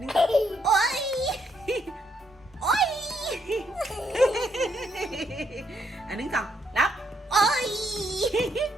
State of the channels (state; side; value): normal; both; correlation 0.75